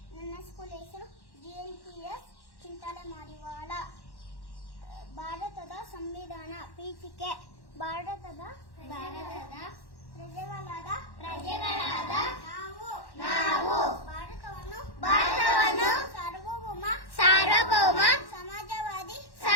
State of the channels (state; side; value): late; right; 1.1 ms